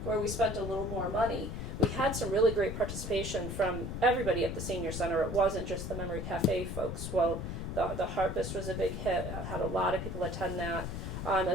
where we spent a little more money, we had some really great participation from everybody at the senior center. It wasn't just the Memory Cafe folks. Well, the Harpist was a big hit. I had a lot of people attend that,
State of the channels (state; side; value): noise; left; rumble, 5 dB below the sound